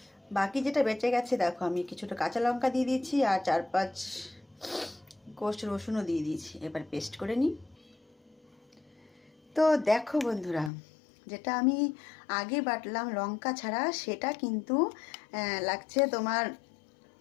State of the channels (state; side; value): drops out; right; at 10.7 s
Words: বাকি যেটা বেঁচে গেছে দেখো, আমি কিছুটা কাঁচা লঙ্কা দিয়ে দিয়েছি আর 4-5 কোষ রসুনও দিয়ে দিয়েছি। এবার পেস্ট করে নিই। তো দেখো বন্ধুরা, যেটা আমি আগে বাটলাম লঙ্কা ছাড়া, সেটা কিন্তু লাগছে তোমার